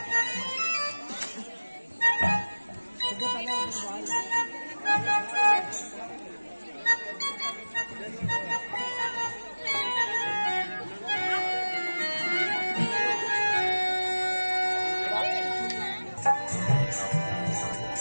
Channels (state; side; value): inverted; both; correlation -1.00